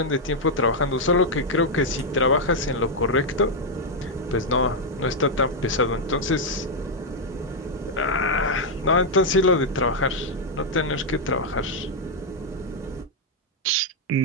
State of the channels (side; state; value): both; normal; correlation -0.01